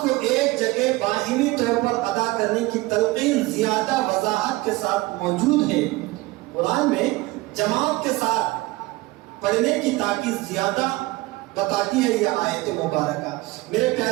کو ایک جگہ باہمی طور پر ادا کرنے کی تلقین زیادہ وضاحت کے ساتھ موجود ہے۔ قرآن میں جماعت کے ساتھ پڑھنے کی تاکید زیادہ بتاتی ہے یہ آیت مبارکہ۔ میرے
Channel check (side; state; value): left; quieter; 20.8 dB